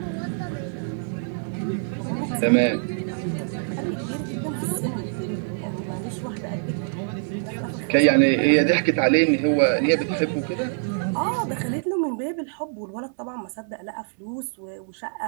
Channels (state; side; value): silent; left; digital silence